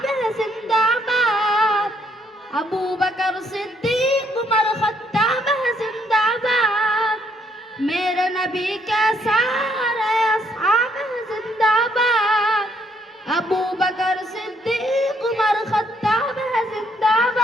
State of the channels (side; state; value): both; normal; correlation 0.69